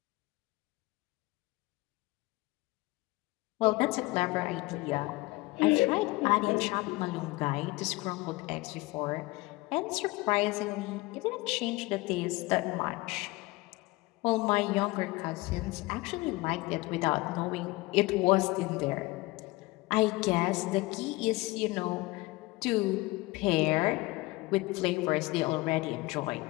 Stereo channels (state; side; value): quieter; right; 21.8 dB